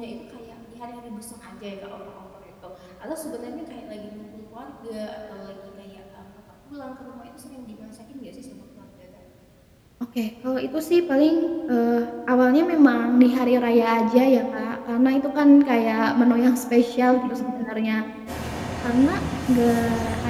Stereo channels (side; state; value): both; identical; correlation 1.00